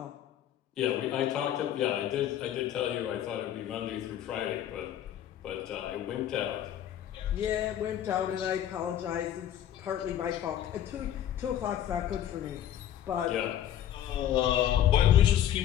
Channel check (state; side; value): quieter; right; 11.1 dB